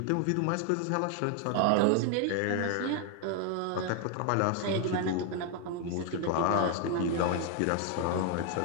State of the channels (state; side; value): different; both; correlation 0.01